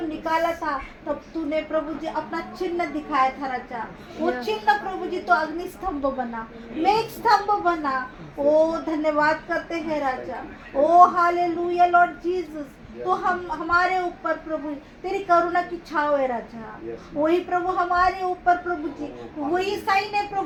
निकाला था तब तूने प्रभु जी अपना चिन्ह दिखाया था राजा। वो चिन्ह प्रभु जी तो अग्नि स्तंभ बना, मेघ स्तंभ बना। ओ धन्यवाद करते हैं राजा। ओ हालेलुया लॉर्ड जीसस। तो हम हमारे ऊपर प्रभु तेरी करुणा की छाव है राजा। वही प्रभु हमारे ऊपर प्रभु जी वही साइन है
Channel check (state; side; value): identical; both; correlation 1.00